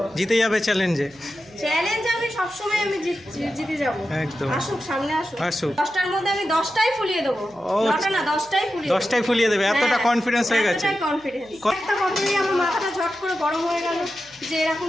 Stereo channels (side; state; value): right; noise; hum, 29 dB below the sound